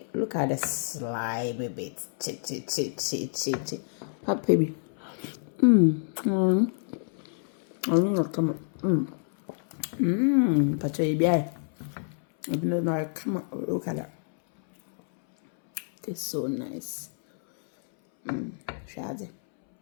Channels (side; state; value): right; silent; 59 dB below the other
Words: look at the slimy bit. Che. Papa, baby. Come on. Pacha, come on. Look at that. It's so nice. Shade.